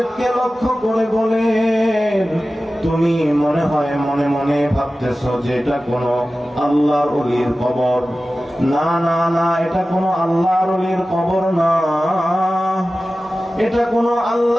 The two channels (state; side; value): normal; both; correlation 0.95